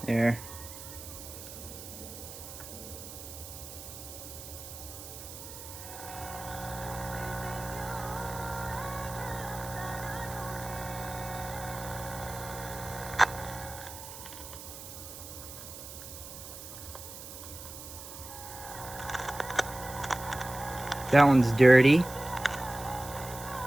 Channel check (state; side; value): noise; right; hiss, 12 dB below the sound